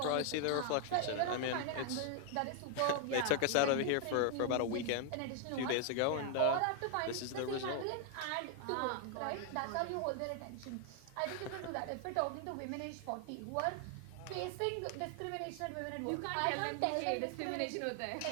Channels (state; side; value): different; both; correlation 0.00